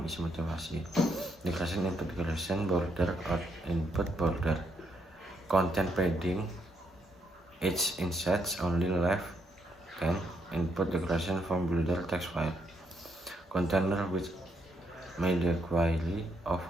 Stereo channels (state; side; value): normal; both; correlation 0.76